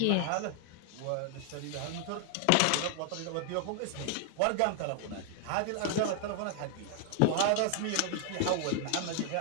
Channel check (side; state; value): both; different; correlation 0.00